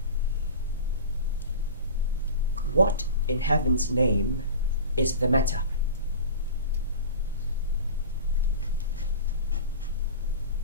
What in heaven's name is the matter?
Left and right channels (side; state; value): both; inverted; correlation -0.34